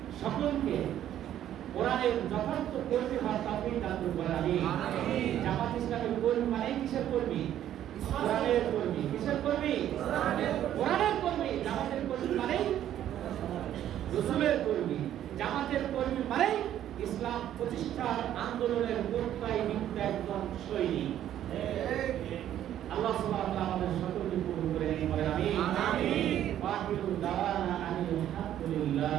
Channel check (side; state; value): left; quieter; 11.4 dB